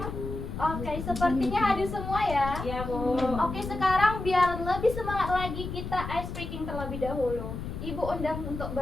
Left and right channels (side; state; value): left; noise; rumble, 7 dB below the sound